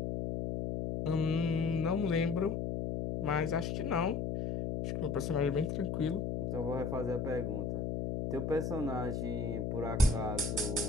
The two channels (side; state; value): left; noise; hum, 1 dB below the sound